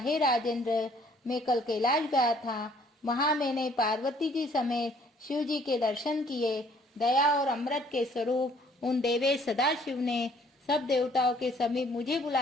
राजेंद्र, मैं कल कैलाश गया था। वहां मैंने पार्वती जी समेत शिव जी के दर्शन किए। दया और अमृत के स्वरूप उन देवेश सदाशिव ने सब देवताओं के समीप मुझे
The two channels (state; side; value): normal; both; correlation 0.60